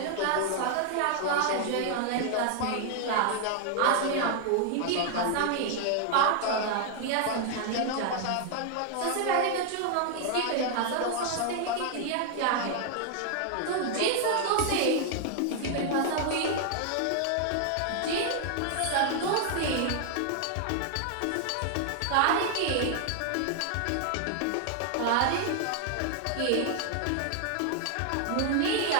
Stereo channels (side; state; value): both; different; correlation 0.00